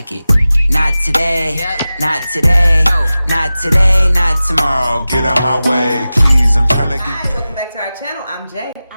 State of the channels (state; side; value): inverted; both; correlation -0.96